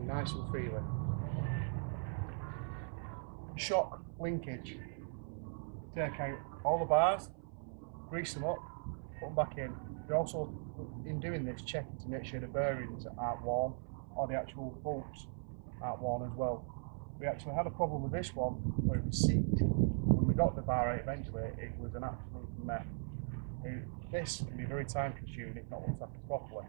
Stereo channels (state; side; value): silent; left; 52 dB below the other